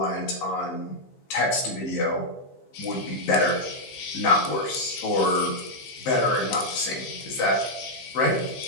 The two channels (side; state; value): right; late; 15 ms